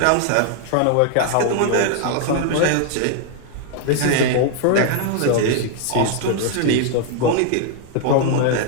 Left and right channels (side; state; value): both; different; correlation 0.00